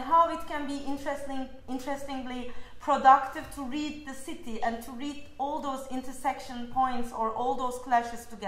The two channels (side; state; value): both; identical; correlation 1.00